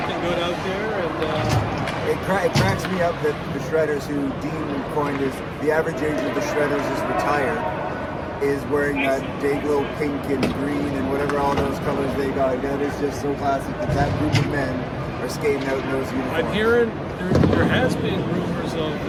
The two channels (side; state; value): both; identical; correlation 1.00